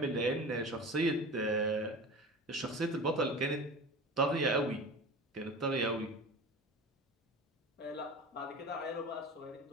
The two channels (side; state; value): both; normal; correlation 0.33